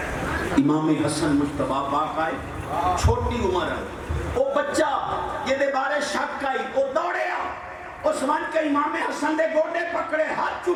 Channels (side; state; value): both; identical; correlation 1.00